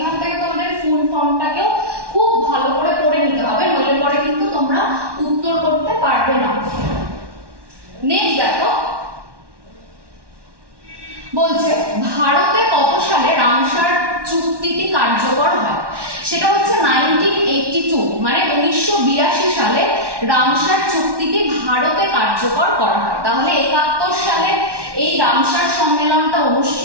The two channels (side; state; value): left; late; 1.1 ms